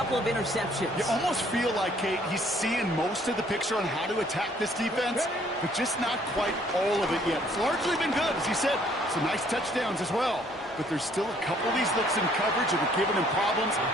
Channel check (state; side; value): normal; both; correlation 0.62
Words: of interceptions. You almost feel like, Kate, he's seeing most of the picture on how to attack this defense, but just not quite all of it yet. It's largely been good, as he said. Some nice touchdowns as well. But there's still a couple of these looks in coverage that are giving him problems,